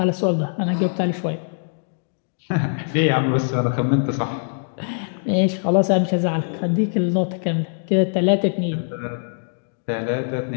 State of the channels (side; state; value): right; silent; digital silence